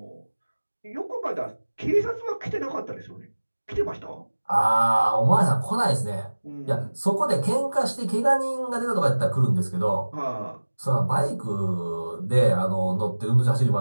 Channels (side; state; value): both; inverted; correlation -1.00